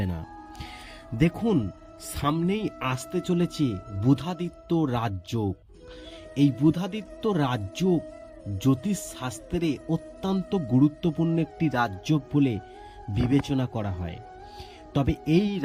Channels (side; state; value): both; identical; correlation 1.00